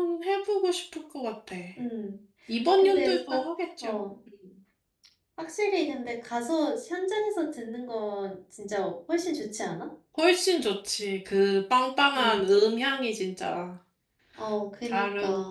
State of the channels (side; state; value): both; identical; correlation 1.00